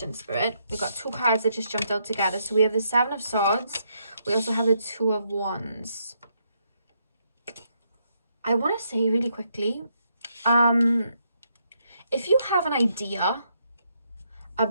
Spirit? We've got 2 cards that just jumped out together. So we have the 7 of Swords. We also have the 2 of Wands. I want to say really quickly, if you have an idea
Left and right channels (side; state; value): both; inverted; correlation -0.76